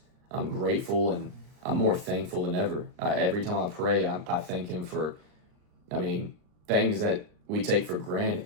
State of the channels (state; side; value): late; left; 39 ms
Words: grateful, and I'm more thankful than ever. Every time I pray, I thank him for, things that we take for granted.